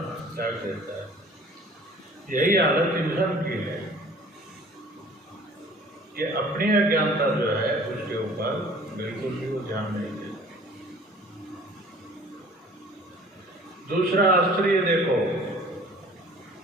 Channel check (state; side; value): normal; both; correlation 0.50